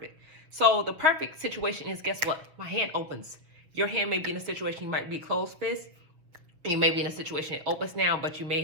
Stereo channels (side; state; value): left; late; 6.8 ms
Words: So the perfect situation is, guess what? My hand opens. Your hand may be in a situation, you might be closed fist. You may be in a situation it opens now, but you may